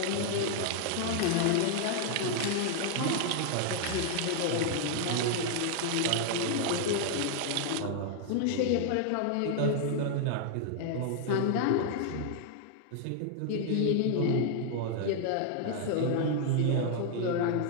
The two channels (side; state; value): both; different; correlation 0.00